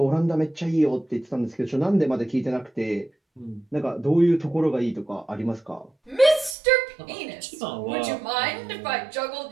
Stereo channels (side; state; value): left; drops out; at 6.6 s